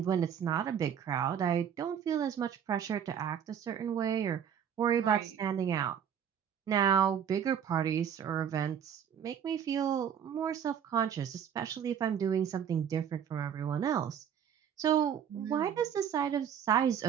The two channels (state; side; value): quieter; left; 8.5 dB